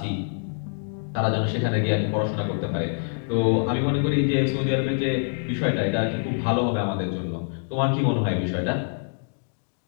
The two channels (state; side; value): silent; right; 62 dB below the other